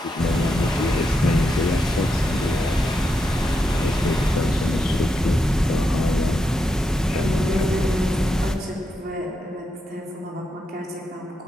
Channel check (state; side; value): normal; both; correlation 0.84